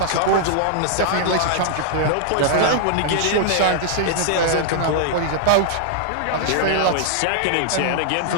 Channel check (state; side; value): different; both; correlation -0.01